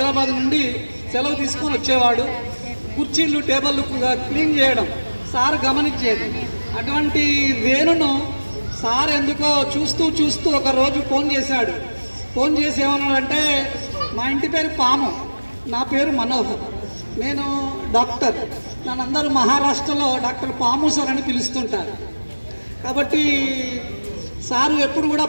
నుండి సెలవు తీసుకొని వచ్చేవాడు. కుర్చీలు, టేబుల్లు క్లీన్ చేయడం సార్ గమనించేది. అటువంటి వేణును సార్ ఎందుకో చూస్తూ ఒక రోజు ఫోన్ చేశాడు. ఫోన్ చేసి ఏమన్నాడంటే, మా ఇంటి పేరు పాము, నా పేరు మనోహర్, నేను డాక్టర్, నన్ను అందరూ మహారాష్ట్రలో డాక్టర్ పాము సార్ అని పిలుస్తుంటారు. కాబట్టి సారు ఎప్పుడు కూడా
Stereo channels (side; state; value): both; inverted; correlation -1.00